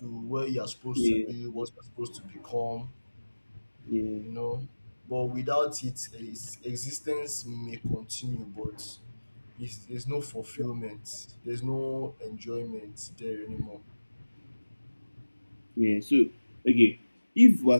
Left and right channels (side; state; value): both; inverted; correlation -1.00